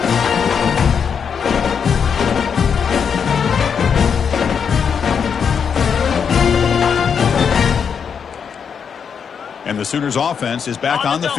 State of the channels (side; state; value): right; quieter; 6.9 dB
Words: And the Sooners offense is back on the